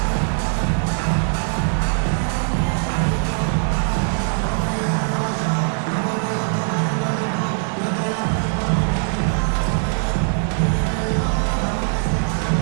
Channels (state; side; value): silent; left; digital silence